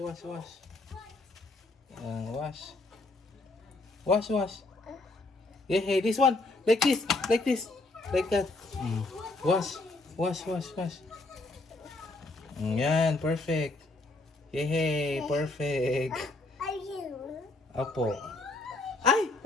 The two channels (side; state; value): right; quieter; 3.1 dB